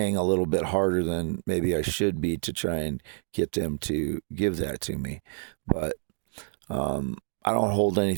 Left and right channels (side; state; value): left; silent; digital silence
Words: a little bit harder than maybe I should be to try and get them to give that to me. But I don't hold